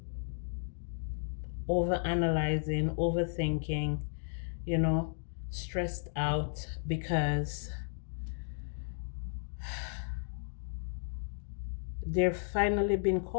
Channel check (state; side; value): silent; right; digital silence